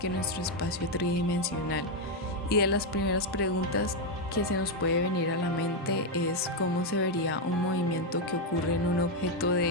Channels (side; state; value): both; normal; correlation 0.02